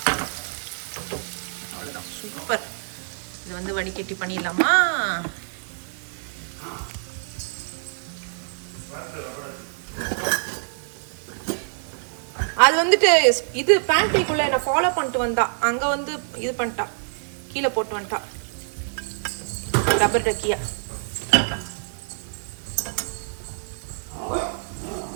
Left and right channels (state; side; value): silent; left; 61 dB below the other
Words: அவ்வளோதான், சூப்பர். இது வந்து வடிகட்டி பண்ணிடலாமா? அது வந்துட்டு இது பேண்ட்ரிக்குள்ள என்ன ஃபாலோ பண்ணிட்டு வந்தா, அங்கே வந்து இது பண்ணிட்டா, கீழே போட்டு வந்துட்டா ரப்பர் டக்கியா.